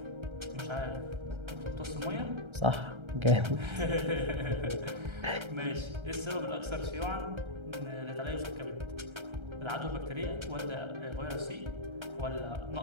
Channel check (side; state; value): left; late; 1.3 ms